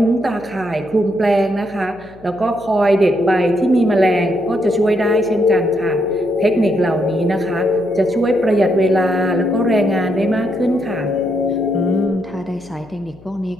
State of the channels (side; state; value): left; noise; hum, 23 dB below the sound